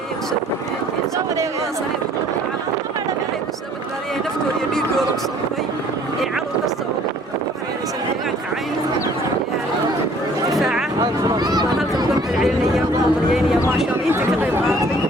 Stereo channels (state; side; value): normal; both; correlation 0.56